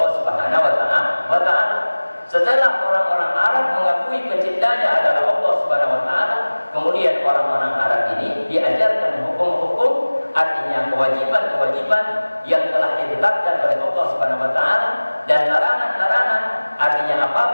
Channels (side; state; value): both; inverted; correlation -1.00